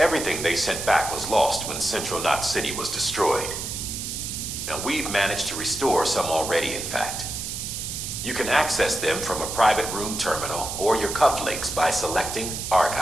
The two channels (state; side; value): noise; right; hiss, 5 dB below the sound